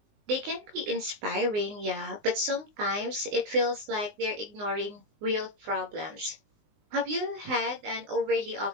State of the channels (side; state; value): left; late; 19 ms